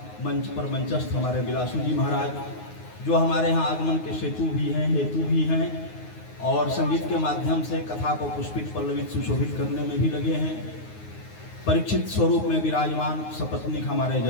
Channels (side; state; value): right; late; 9.5 ms